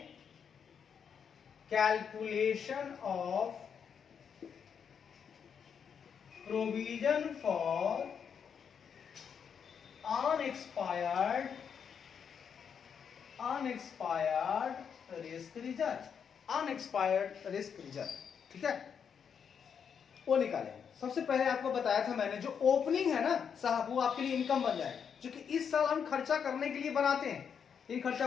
calculation of provision for unexpired risk reserve, unexpired risk reserve, ठीक है, वो निकालेंगे। सबसे पहले आपको बताया था मैंने, जो ओपनिंग है ना साहब, वो आपके लिए इनकम बन जाएगा, क्योंकि इस साल हम खर्चा करने के लिए बनाते हैं, लेकिन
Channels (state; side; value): quieter; right; 7.2 dB